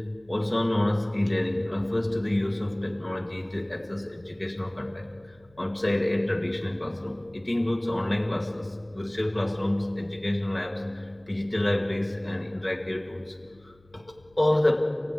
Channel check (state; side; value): noise; left; hum, 30 dB below the sound